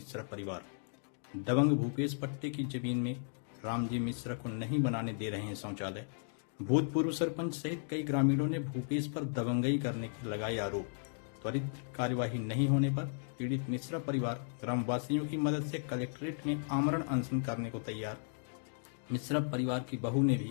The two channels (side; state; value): right; silent; digital silence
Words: परिवार। दबंग भूपेश पट्टे की जमीन में रामजी मिश्रा को नहीं बनाने दे रहे हैं शौचालय। भूतपूर्व सरपंच सहित कई ग्रामीणों ने भूपेश पर दबंगई करने के लगाए आरोप। त्वरित कार्यवाही नहीं होने पर पीड़ित मिश्रा परिवार ग्रामवासियों की मदद से कलेक्ट्रेट में आमरण अनशन करने को तैयार। मिश्रा परिवार की बहू ने